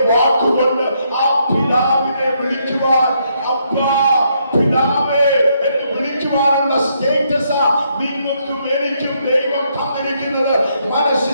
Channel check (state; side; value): inverted; both; correlation -0.75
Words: വാക്കുകൊണ്ട് ആ പിതാവിനെ വിളിക്കുവാൻ, അബ്ബാ പിതാവേ എന്ന് വിളിക്കുവാനുള്ള സ്റ്റേറ്റസാ നിങ്ങൾക്കും എനിക്കും ദൈവം തന്നിരിക്കുന്നത്.